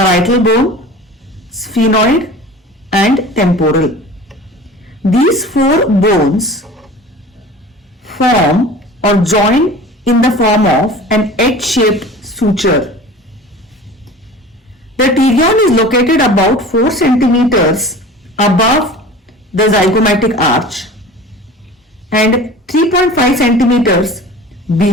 bone, sphenoid, and temporal. These four bones form or join in the form of an H-shaped suture. The pterion is located about 4 centimeters above the zygomatic arch and 3.5 centimeters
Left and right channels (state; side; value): normal; both; correlation 0.40